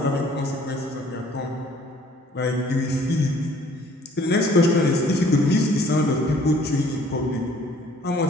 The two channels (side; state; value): both; normal; correlation 0.56